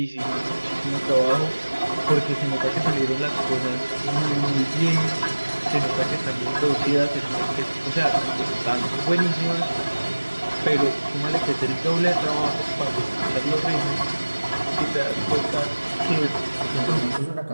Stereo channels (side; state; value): both; inverted; correlation -1.00